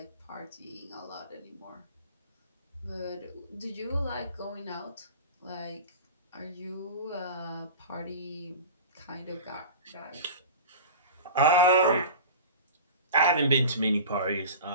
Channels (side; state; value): both; inverted; correlation -0.34